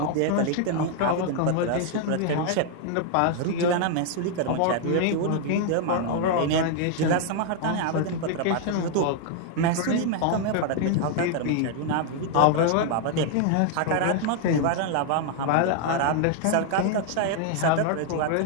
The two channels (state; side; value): different; both; correlation 0.00